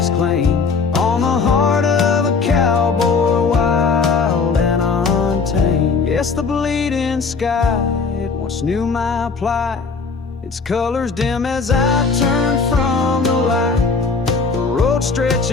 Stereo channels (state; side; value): quieter; right; 4.8 dB